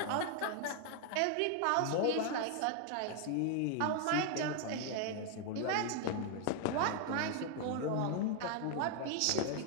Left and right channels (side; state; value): both; different; correlation 0.00